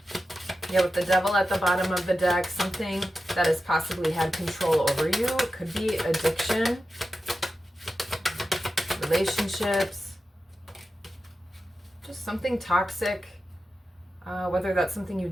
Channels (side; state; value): both; normal; correlation 0.91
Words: Yeah, with the Devil at the bottom of the deck, something that has possibly had control over you. It could be addiction, relationships, just something toxic, whether that's something you